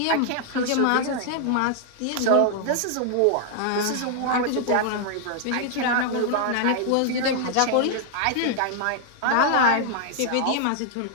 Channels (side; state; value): both; different; correlation 0.00